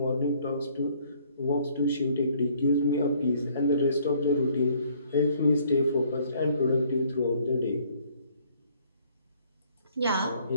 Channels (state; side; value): inverted; both; correlation -0.62